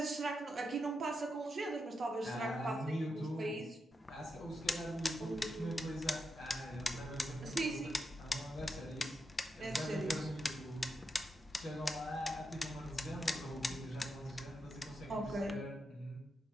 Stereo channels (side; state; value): both; normal; correlation 0.85